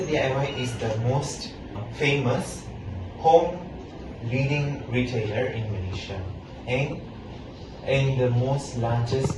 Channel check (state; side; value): identical; both; correlation 1.00